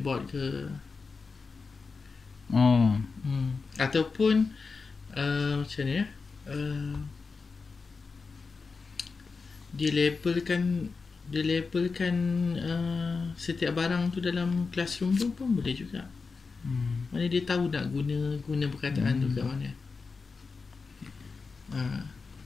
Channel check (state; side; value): quieter; right; 4.6 dB